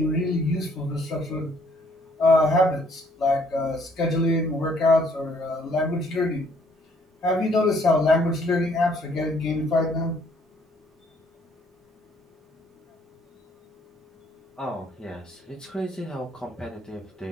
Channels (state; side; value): normal; both; correlation 0.64